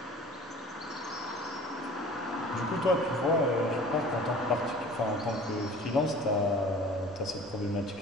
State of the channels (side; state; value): both; normal; correlation 0.45